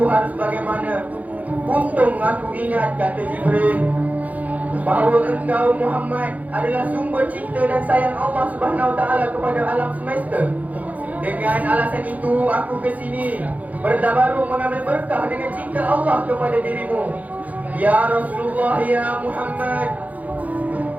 harus bagaimana. Untung aku ingat," kata Jibril, "bahawa engkau Muhammad adalah sumber cinta dan sayang Allah Subhanahu wa taala kepada alam semesta. Dengan alasan itu aku ke sini bertabaruk mengambil berkah dengan cinta Allah kepada dirimu. Ya Rasulullah, ya Muhammad."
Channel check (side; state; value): left; late; 0.076 ms